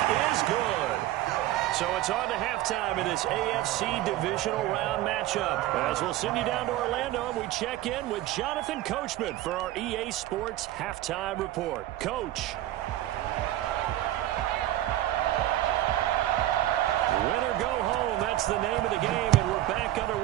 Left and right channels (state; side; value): quieter; left; 14.6 dB